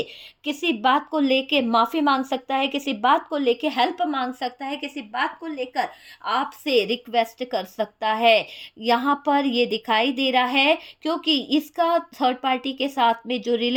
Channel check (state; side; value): identical; both; correlation 1.00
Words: किसी बात को लेके माफ़ी मांग सकता है, किसी बात को लेके हेल्प मांग सकता है, किसी बात को लेकर आपसे रिक्वेस्ट कर सकता है। यहाँ पर ये दिखाई दे रहा है, क्योंकि इसका थर्ड पार्टी के साथ में जो